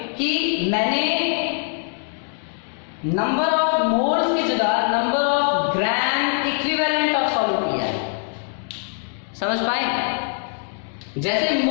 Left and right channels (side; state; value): right; silent; 64 dB below the other